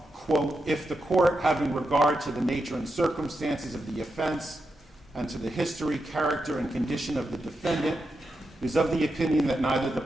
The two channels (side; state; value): both; normal; correlation 0.87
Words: quote, "if the court, having regard to the nature and circumstances of the offense and to the history, character, and condition of the defendant, is of the opinion that neither the